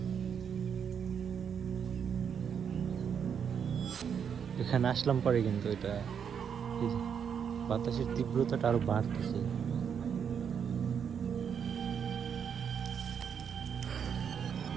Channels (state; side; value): quieter; left; 7.5 dB